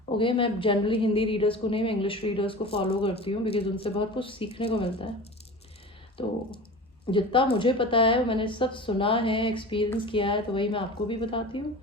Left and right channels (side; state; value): both; normal; correlation 0.34